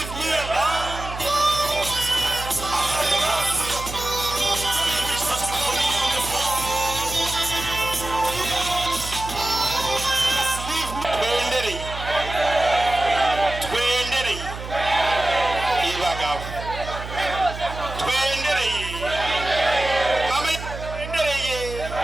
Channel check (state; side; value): noise; right; hum, 9 dB below the sound